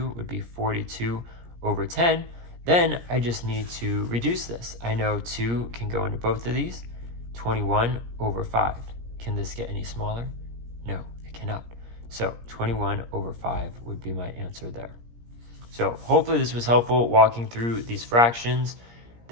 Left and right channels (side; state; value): left; late; 17 ms